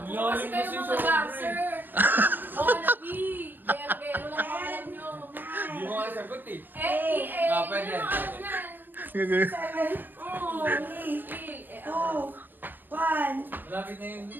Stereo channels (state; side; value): late; left; 0.091 ms